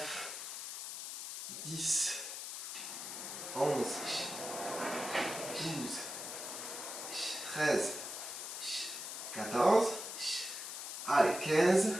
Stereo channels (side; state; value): left; noise; hiss, 6 dB below the sound